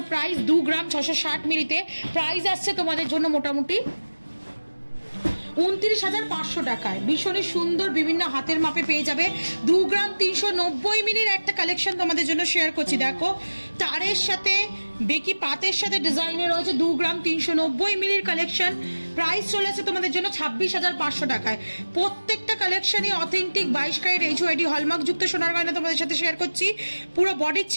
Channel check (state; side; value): inverted; both; correlation -1.00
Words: প্রাইস 2 গ্রাম 660 মিলিতে। প্রাইস আসছে তোমাদের জন্য মোটামুটি 29,500 টাকায়। ভীষণই সুন্দর বিভিন্ন হাতের মাপে পেয়ে যাবে। 2 গ্রাম 390 মিলির একটা কালেকশন তোমাদের জন্য শেয়ার করছি। দেখো তারের সাথে বেকি পাতের সাথে ডিজাইনে রয়েছে 2 গ্রাম 390 মিলির কালেকশন। প্রাইস চলে আসছে তোমাদের জন্য 26,500 টাকায়। প্রত্যেকটা কালেকশনই অথেন্টিক 22 ক্যারেট HUID হলমার্ক যুক্ত সোনার গয়না তোমাদের সাথে শেয়ার করছি। পুরো বডির